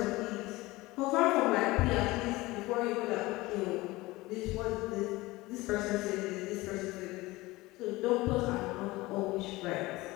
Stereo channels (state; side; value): quieter; right; 20.3 dB